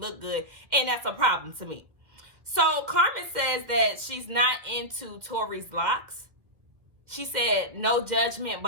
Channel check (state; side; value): late; left; 1.9 ms